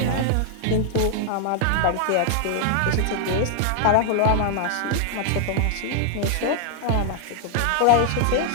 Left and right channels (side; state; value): both; different; correlation 0.00